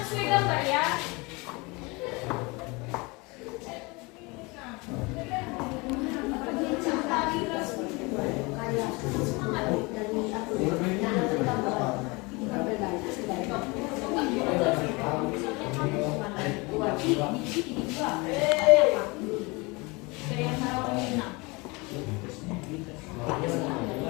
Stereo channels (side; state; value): right; quieter; 26.3 dB